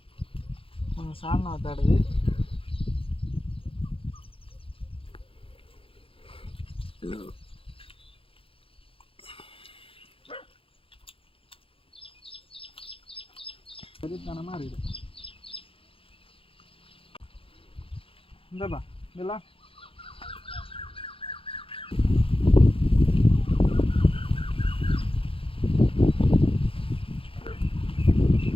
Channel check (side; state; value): right; late; 0.27 ms